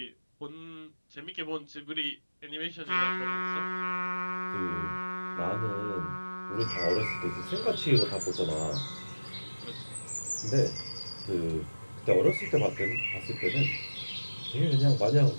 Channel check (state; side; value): inverted; both; correlation -1.00